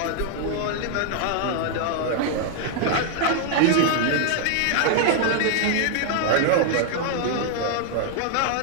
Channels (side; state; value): both; different; correlation 0.00